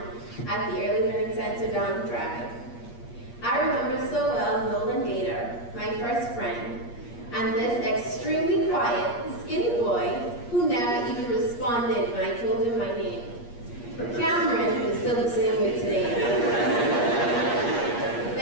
at the Early Learning Center down the drive. I remember so well Nolan Gator, my first friend, and this extremely quiet, skinny boy who never even responded when I told him my name. Cameron is still the same way today.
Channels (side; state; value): right; late; 8.5 ms